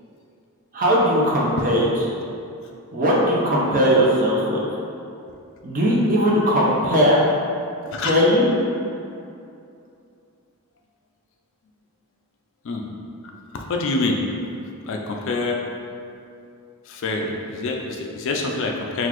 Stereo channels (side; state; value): both; normal; correlation 0.11